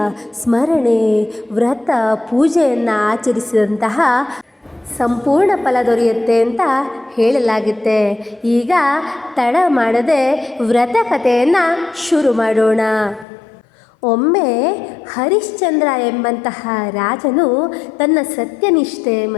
ಸ್ಮರಣೆ, ವ್ರತ, ಪೂಜೆಯನ್ನು ಆಚರಿಸಿದಂತಹ ಸಂಪೂರ್ಣ ಫಲ ದೊರೆಯುತ್ತೆ ಅಂತ ಹೇಳಲಾಗುತ್ತೆ. ಈಗ ತಡ ಮಾಡದೆ ವ್ರತಕಥೆಯನ್ನು ಶುರು ಮಾಡೋಣ. ಒಮ್ಮೆ ಹರಿಶ್ಚಂದ್ರ ಎಂಬಂತಹ ರಾಜನು ತನ್ನ ಸತ್ಯನಿಷ್ಠೆ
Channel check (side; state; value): right; drops out; at 13.2 s